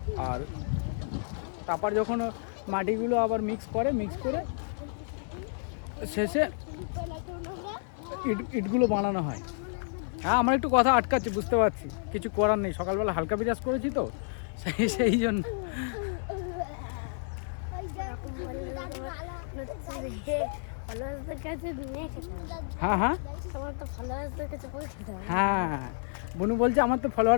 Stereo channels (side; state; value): right; silent; digital silence